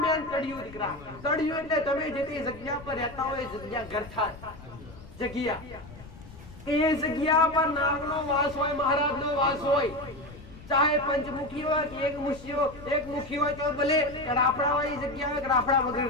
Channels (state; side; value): noise; left; rumble, 17 dB below the sound